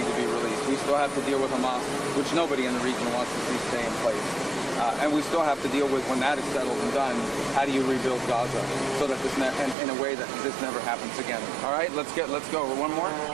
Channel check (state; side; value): drops out; left; at 9.8 s